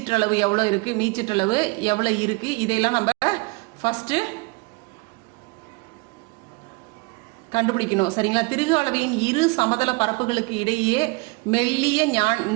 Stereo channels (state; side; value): quieter; left; 26.8 dB